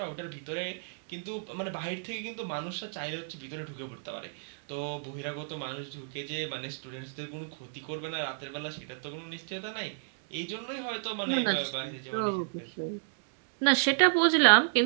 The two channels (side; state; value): left; silent; digital silence